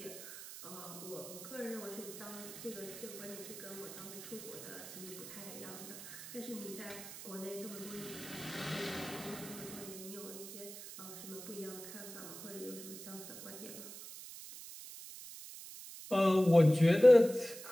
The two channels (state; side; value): noise; right; hiss, 12 dB below the sound